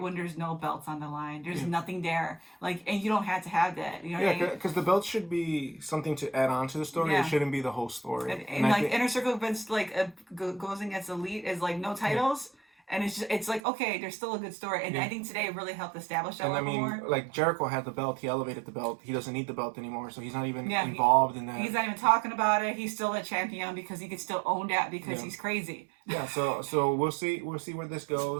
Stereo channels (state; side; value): drops out; left; at 13.6 s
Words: when there's no belts on the line. There's nothing there. Like, and you don't have to have that. You know what I mean? Because the belt should be something to add on to the story. It shouldn't be the whole story. And like, Inner Circle events, like, goes against Elite is, like, no titles. And it's like, okay, there's still a good story. And I think today it really helped establish that a little more. Like, Jericho had the belt. He elevated the belt. He doesn't need the belt anymore. So he's not even involved in that. He's not even talking about it. He's still a champion because he can still own that because he's crazy. Yeah, so we'll see where this